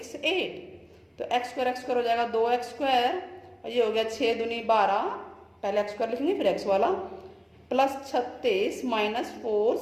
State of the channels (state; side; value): identical; both; correlation 1.00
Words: 8, तो x² हो जाएगा 2x², और ये हो गया 6 दूनी 12, पहले x² लिखेंगे फिर x वाला, plus 36 minus 4